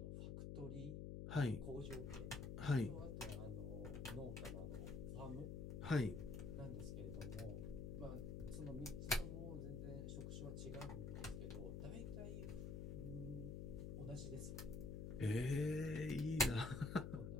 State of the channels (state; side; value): noise; left; hum, 4 dB below the sound